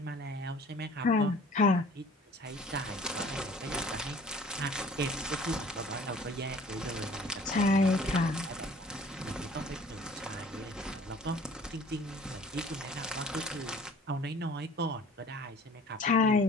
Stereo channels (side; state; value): both; normal; correlation 0.50